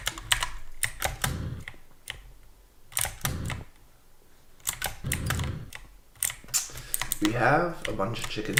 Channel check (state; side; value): identical; both; correlation 1.00